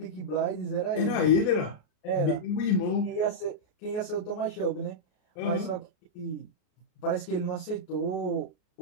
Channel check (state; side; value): late; right; 33 ms